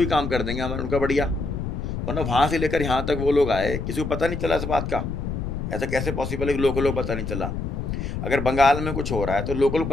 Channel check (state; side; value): noise; left; rumble, 4 dB below the sound